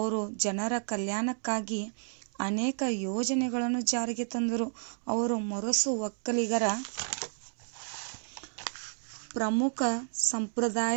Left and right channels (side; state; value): left; silent; digital silence